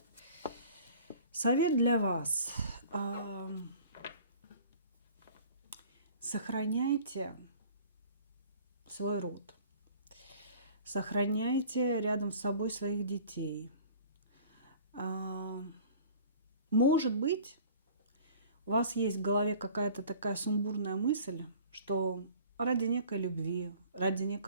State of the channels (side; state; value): both; inverted; correlation -0.48